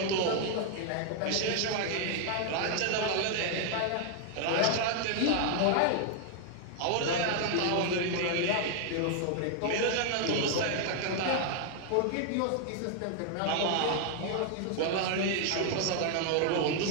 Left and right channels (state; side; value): different; both; correlation 0.00